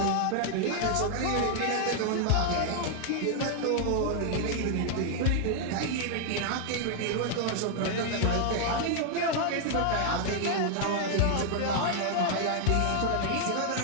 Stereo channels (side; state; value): both; different; correlation 0.00